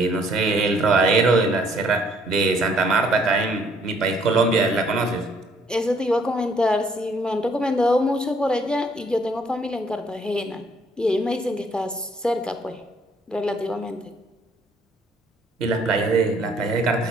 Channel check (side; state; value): both; normal; correlation 0.64